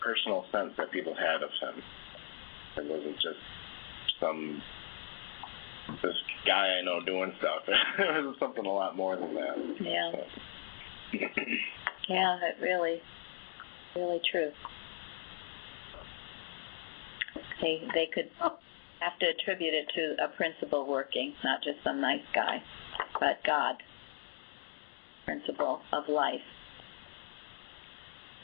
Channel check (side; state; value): right; silent; 53 dB below the other